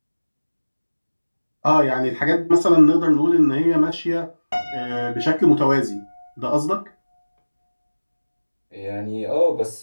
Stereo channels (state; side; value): inverted; both; correlation -1.00